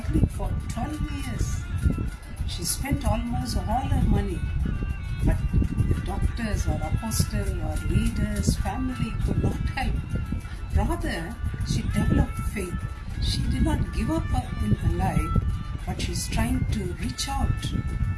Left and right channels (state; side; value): identical; both; correlation 1.00